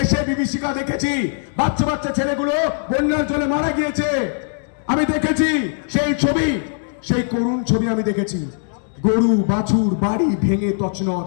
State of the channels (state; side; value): silent; right; digital silence